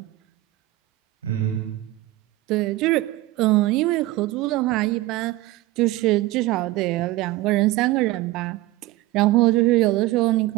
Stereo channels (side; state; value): left; quieter; 17.6 dB